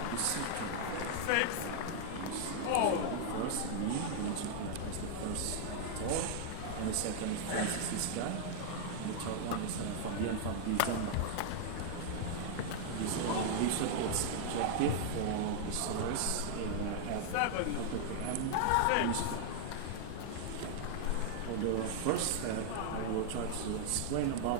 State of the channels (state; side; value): different; both; correlation -0.01